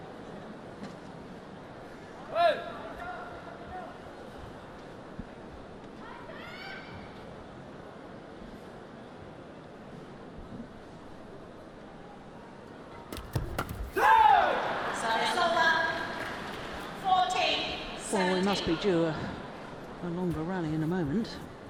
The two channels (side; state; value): both; identical; correlation 1.00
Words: Well, we must be due a longer rally in a moment.